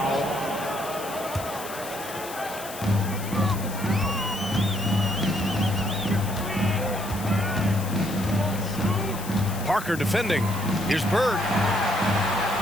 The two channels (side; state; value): left; noise; hiss, 12 dB below the sound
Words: Parker defending. Here's Bird.